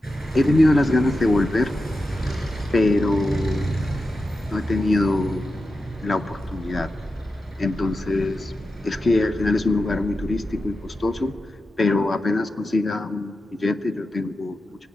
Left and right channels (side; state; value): both; normal; correlation 0.91